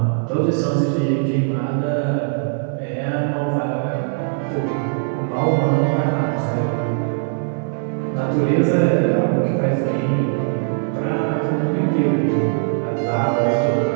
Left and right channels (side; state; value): left; silent; digital silence